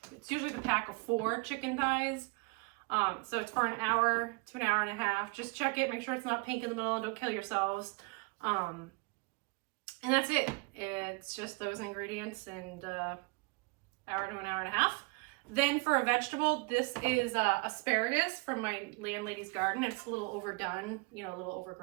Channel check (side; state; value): left; quieter; 28.6 dB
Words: it's usually the pack of 4 chicken thighs. So it's for an hour to an hour and a half. Just check it, make sure it's not pink in the middle, and don't kill yourselves. And that's it. It's just those ingredients and hour to an hour and a half. Then for a vegetable, this is asparagus from my landlady's garden. It's a little overdone, you know, a little